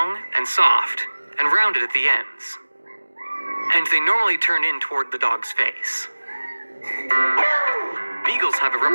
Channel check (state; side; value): inverted; both; correlation -1.00